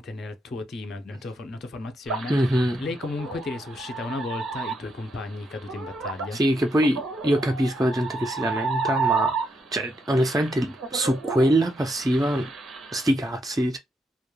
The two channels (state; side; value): normal; both; correlation 0.79